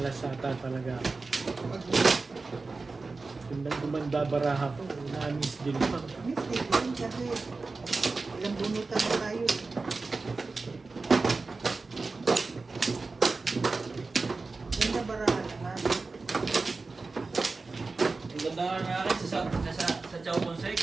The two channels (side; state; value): left; quieter; 3.8 dB